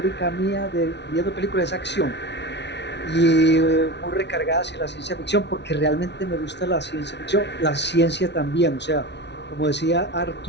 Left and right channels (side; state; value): right; late; 0.50 ms